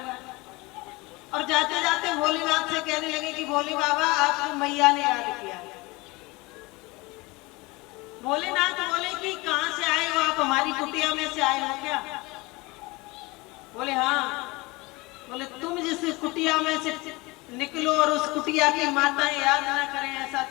और जाते जाते भोलेनाथ से कहने लगे कि भोले बाबा आपको मैया ने याद किया। भोलेनाथ बोले कि कहां से आए हो आप, हमारी कुटिया में से आए हो क्या? बोले हाँ। बोले तुम जिस कुटिया में से निकलो और उस कुटिया की माताएं याद ना करें, ऐसा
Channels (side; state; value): right; quieter; 23.1 dB